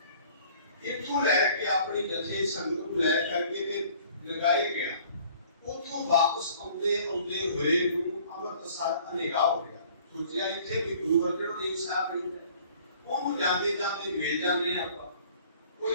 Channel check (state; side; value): inverted; both; correlation -0.53